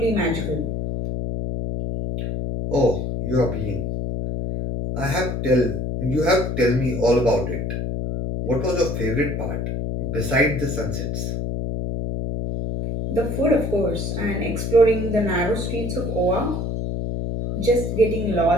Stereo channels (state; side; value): noise; left; hum, 2 dB below the sound